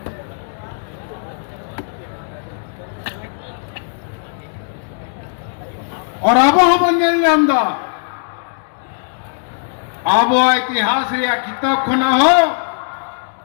और अब हम अंदा अब इतिहास या किताब खोना हो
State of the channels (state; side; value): silent; right; 63 dB below the other